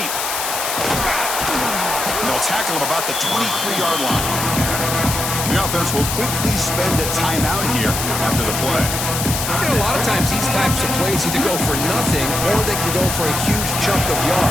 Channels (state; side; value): noise; left; hiss, 3 dB below the sound